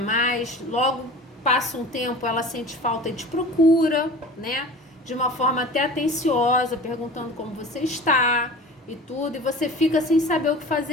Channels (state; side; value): normal; both; correlation 0.39